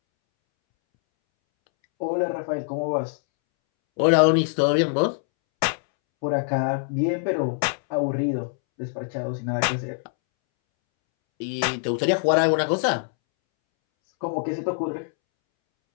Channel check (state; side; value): silent; right; 63 dB below the other